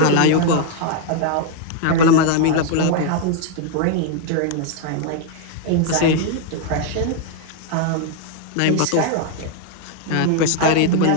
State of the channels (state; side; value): different; both; correlation 0.00